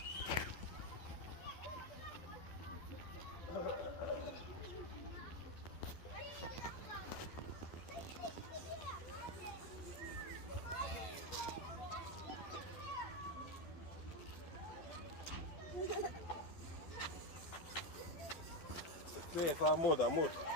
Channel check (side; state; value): right; late; 11 ms